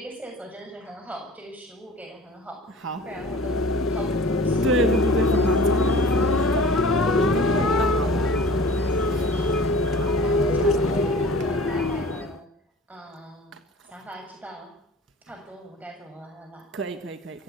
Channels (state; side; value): normal; both; correlation 0.42